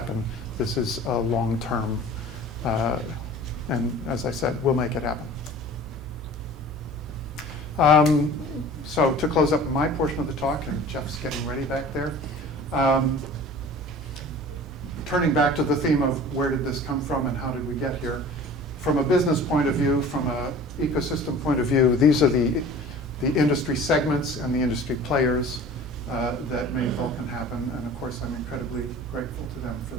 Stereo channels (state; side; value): normal; both; correlation 0.43